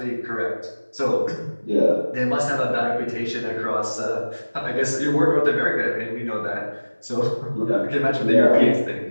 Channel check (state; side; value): inverted; both; correlation -1.00